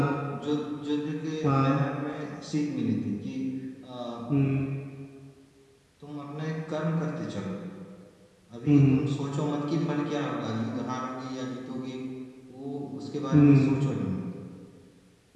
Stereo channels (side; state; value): both; identical; correlation 1.00